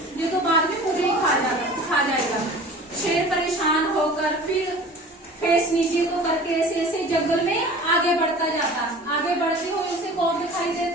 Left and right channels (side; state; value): both; normal; correlation 0.41